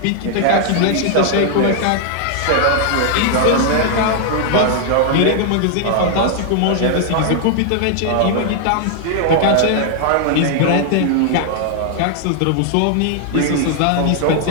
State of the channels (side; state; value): both; different; correlation 0.00